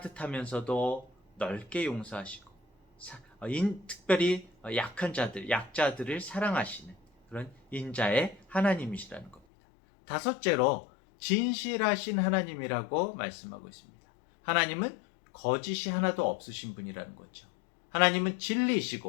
넓게 용서하시고 특별히 약한 자들, 약자들을 사랑하시는 그런 인자의 하나님이시라는 겁니다. 다섯째로 진실하신 하나님이라고 말씀하고 있습니다. 하나님은 거짓이 하나도 없으신 분이라는 거죠. 하나님은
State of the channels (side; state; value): right; drops out; at 9.4 s